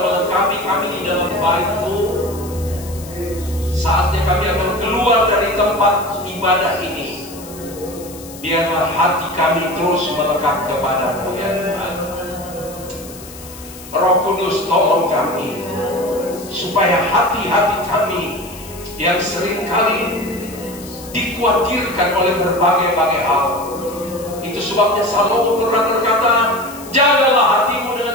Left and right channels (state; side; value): noise; left; hiss, 17 dB below the sound